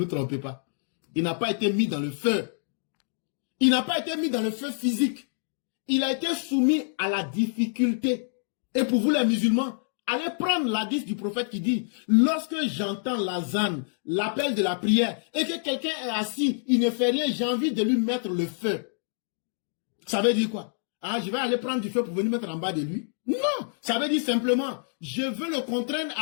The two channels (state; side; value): silent; right; digital silence